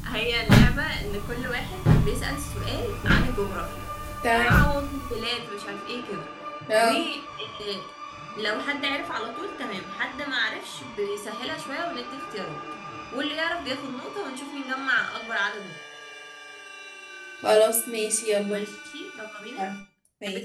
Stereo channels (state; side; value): identical; both; correlation 1.00